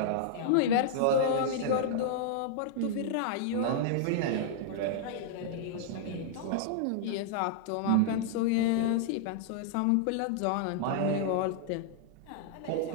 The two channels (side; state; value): both; different; correlation -0.01